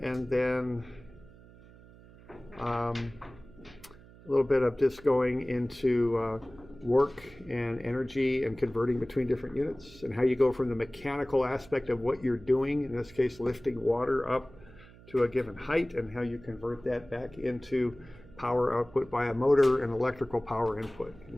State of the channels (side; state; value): right; noise; hum, 22 dB below the sound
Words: then a little bit of just going into work and energy and converting between different units, and how you go from the mechanical aspect of what you're doing, in this case lifting water up to a given height, and how you convert that back into power output by a motor and electrical power input.